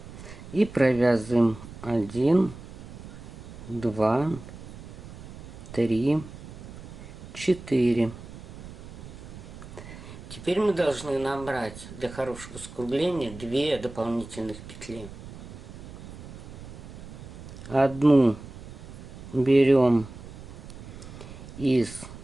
И провязываем 1, 2, 3, 4. Теперь мы должны набрать для хорошего скругления 2 дополнительных петли. Одну берем из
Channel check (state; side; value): noise; right; rumble, 14 dB below the sound